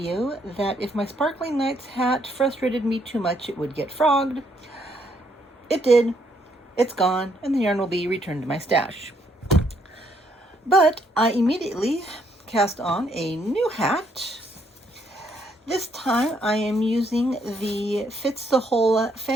that if my Sparkling Nights hat frustrated me too much, it would get frogged. It did. It's gone, and the yarn will be returned to my stash. But I immediately cast on a new hat. This time I am using the Fits the Whole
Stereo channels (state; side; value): normal; both; correlation 0.71